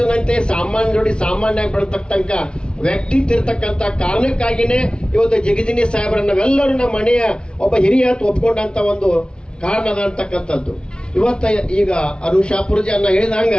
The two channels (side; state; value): right; late; 0.054 ms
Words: ಸಾಮಾನ್ಯ ಜೋಡಿ ಸಾಮಾನ್ಯ ಬೆಳತಕ್ಕಂತ ವ್ಯಕ್ತಿ ಇರ್ತಕ್ಕಂಥ ಕಾರಣಕ್ಕಾಗಿನೇ ಇವತ್ತು ಜಗಜಿನಿ ಸಾಹೇಬ್ರನ್ನ ನಾವೆಲ್ಲರೂ ನಮ್ಮ ಮನೆಯ ಒಬ್ಬ ಹಿರಿಯ ಒಪ್ಕೊಂಡಂತ ಒಂದು ಕಾರಣದ ಅಂತಕ್ಕಂಥದ್ದು. ಇವತ್ತ ಈಗ ಅರುಣ್ ಶಾಪೂರ್ಜಿ ಅನ್ನ ಹೇಳಿದಂಗ